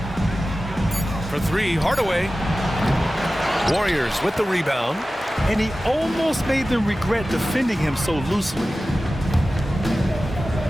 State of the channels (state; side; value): normal; both; correlation 0.95